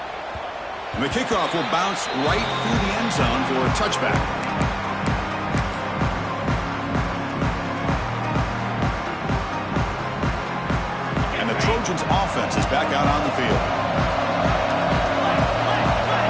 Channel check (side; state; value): both; identical; correlation 1.00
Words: And the kickoff will bounce right through the end zone for a touchback. And the Trojans offense is back out on the field.